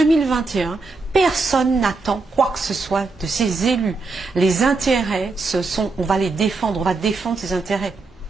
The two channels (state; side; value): quieter; left; 3.8 dB